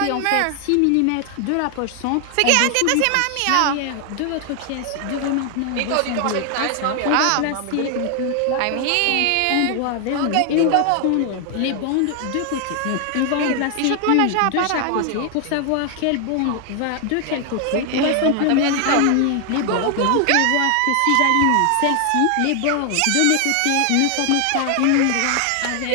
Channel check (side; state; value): both; different; correlation 0.00